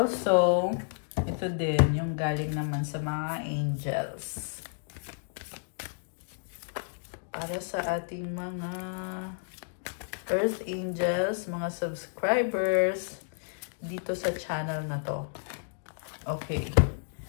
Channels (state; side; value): silent; right; digital silence